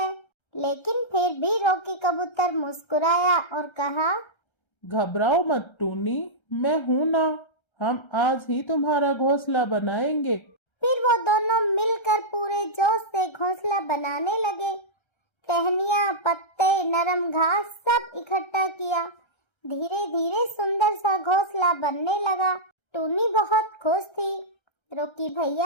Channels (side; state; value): right; late; 1.3 ms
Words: लेकिन फिर भी रॉकी कबूतर मुस्कुराया और कहा, घबराओ मत टूनी, मैं हूं ना। हम आज ही तुम्हारा घोंसला बनाएंगे। फिर वो दोनों मिलकर पूरे जोश से घोंसला बनाने लगे। टहनियाँ, पत्ते, नरम घास सब इकट्ठा किया। धीरे धीरे सुंदर सा घोंसला बनने लगा। टूनी बहुत खुश थी। रॉकी